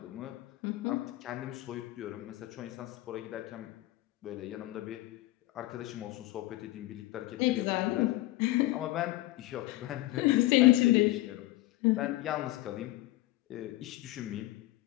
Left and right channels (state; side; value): quieter; right; 17.4 dB